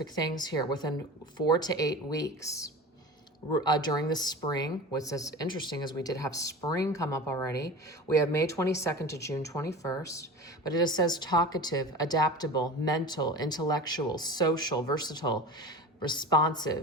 things here within 4 to 8 weeks. During the spring, what's as interesting is we did have spring come up already. We have May 22nd to June 21st, but it says talkative, adaptable, mental, intellectual, social, versatile,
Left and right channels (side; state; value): both; normal; correlation 0.33